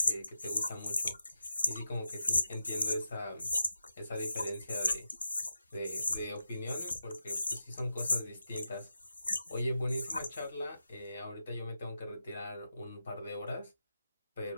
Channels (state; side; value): inverted; both; correlation -0.89